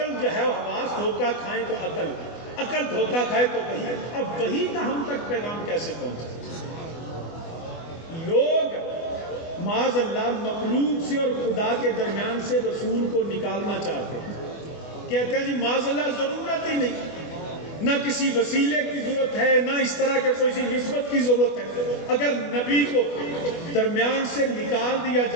جو ہے حواس دھوکہ کھائیں تو عقل دھوکہ کھائے تو وحی۔ اب وحی کا ہم تک پیغام کیسے پہنچے؟ لوگ معاذ اللہ مخلوق سے اور خدا کے درمیان سے رسول کو نکالنا چاہتے ہیں، کہتے ہیں جی معاذ اللہ ضرورت ہی نہیں، نہ کسی وسیلے کی ضرورت ہے، نہ اس طرح کے کوئی نسبت کی ضرورت ہے۔ اگر نبی کو درمیان سے نکال دیا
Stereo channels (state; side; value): late; right; 24 ms